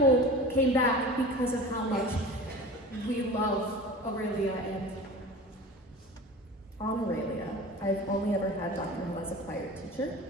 came back because of how much we love Aurelia. And on Aurelia, I've only ever had Dr. Hill as a choir teacher,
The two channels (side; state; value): both; normal; correlation 0.36